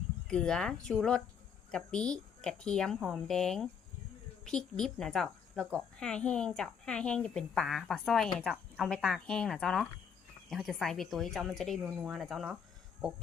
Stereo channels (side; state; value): right; quieter; 7.1 dB